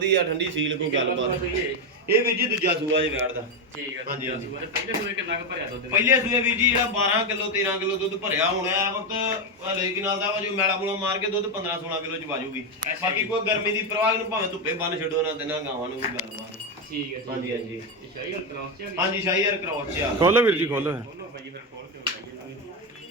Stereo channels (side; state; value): both; normal; correlation 0.09